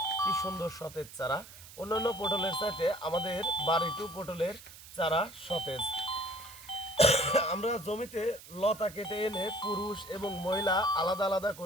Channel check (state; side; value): noise; right; hiss, 17 dB below the sound